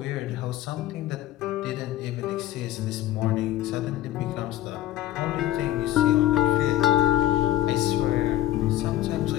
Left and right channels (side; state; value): right; quieter; 13.5 dB